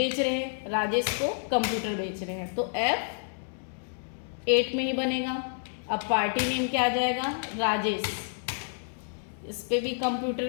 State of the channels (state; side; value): silent; right; digital silence